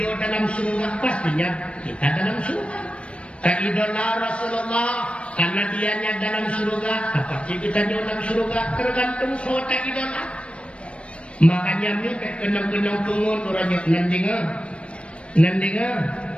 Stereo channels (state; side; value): late; right; 0.060 ms